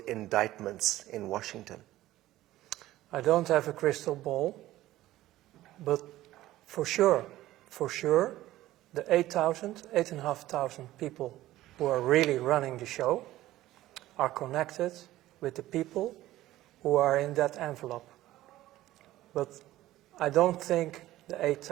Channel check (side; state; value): left; quieter; 15.4 dB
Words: indictments in Washington? I don't have a crystal ball, but for sure, the 8,500 people who are really running the show are connected with the people who are in that envelope. But I don't think the